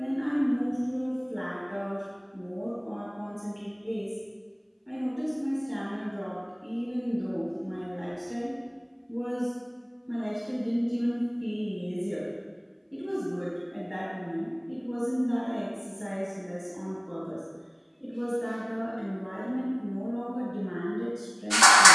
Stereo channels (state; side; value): identical; both; correlation 1.00